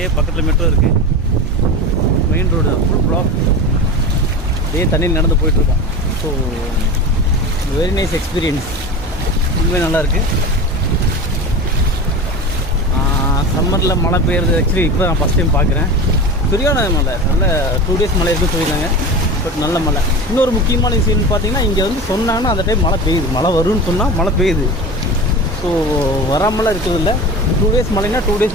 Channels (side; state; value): both; normal; correlation 0.29